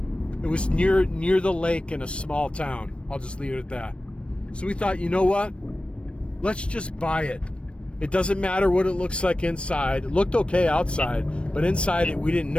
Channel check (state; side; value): late; right; 0.059 ms